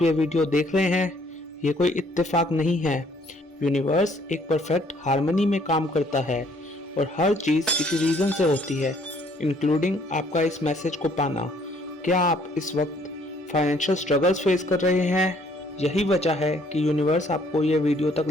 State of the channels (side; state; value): both; normal; correlation 0.63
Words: ये वीडियो देख रहे हैं? ये कोई इत्तेफाक नहीं है। यूनिवर्स एक परफेक्ट हार्मनी में काम करता है और हर चीज़ किसी रीज़न से होती है, इंक्लूडिंग आपका इस मैसेज को पाना। क्या आप इस वक्त फाइनेंशियल स्ट्रगल्स फेस कर रहे हैं? यही वजह है कि यूनिवर्स आपको ये वीडियो तक